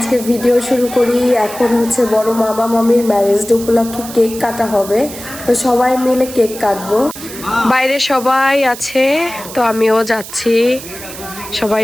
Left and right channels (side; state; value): right; noise; hiss, 13 dB below the sound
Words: ভিডিও শুরু করি। এখন হচ্ছে বড় মামা মামির ম্যারেজ ডে উপলক্ষে কেক কাটা হবে, তো সবাই মিলে কেক কাটবো। বাইরে সবাই আছে, তো আমিও যাচ্ছি, সবাই